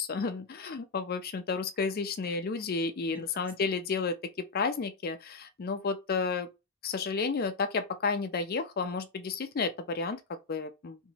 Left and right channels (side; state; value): right; quieter; 4.2 dB